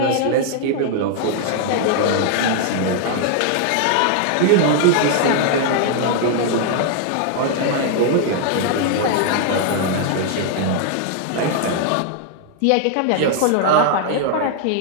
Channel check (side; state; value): both; different; correlation 0.00